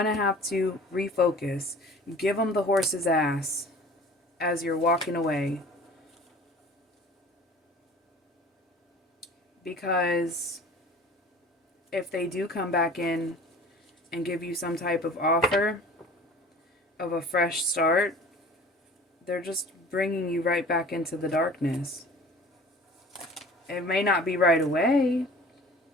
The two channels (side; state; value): both; normal; correlation 0.45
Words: to have to refocus. Give them the horse's ass as you're walking away. Because if they do come back in and give you some type of offer of a fresh start, they're just bringing you right back into the darkness. It may not be right away.